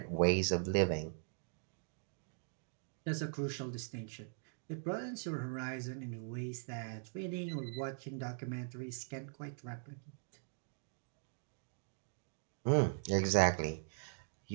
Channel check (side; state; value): left; silent; digital silence